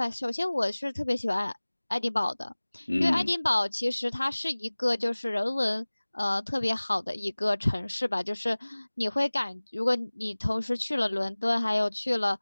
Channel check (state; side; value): inverted; both; correlation -1.00